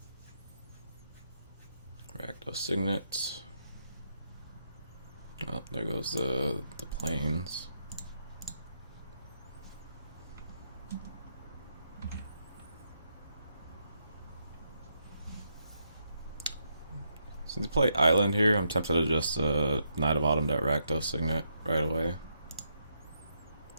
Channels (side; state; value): both; inverted; correlation -0.79